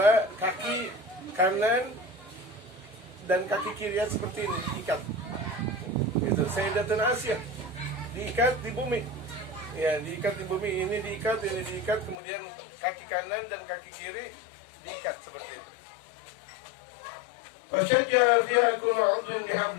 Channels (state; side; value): drops out; right; at 12.2 s